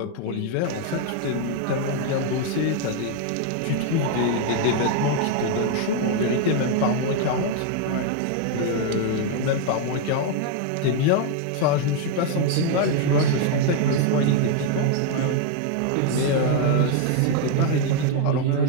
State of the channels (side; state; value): both; different; correlation 0.01